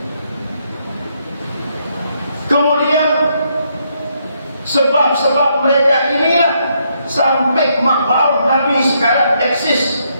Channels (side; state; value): both; inverted; correlation -0.75